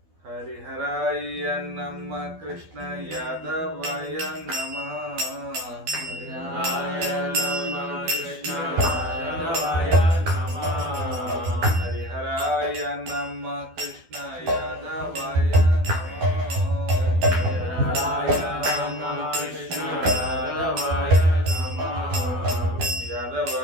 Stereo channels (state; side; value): late; left; 12 ms